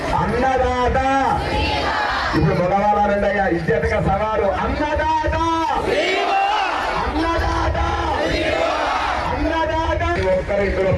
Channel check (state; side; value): identical; both; correlation 1.00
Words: అన్నదాత. ఇప్పుడు మగవాళ్ళు అనండి అయ్యా ఇజ్జతగా సవాలు అన్నదాత అన్నదాత అన్నదాత. ఒక్కరు ఇందులో